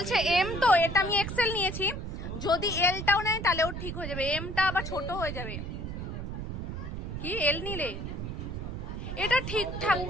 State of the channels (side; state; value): right; noise; rumble, 5 dB below the sound